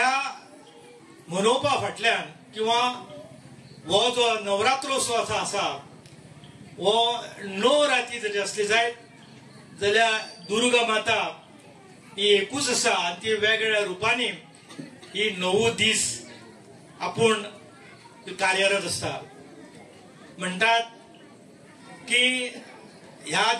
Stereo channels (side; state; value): both; identical; correlation 1.00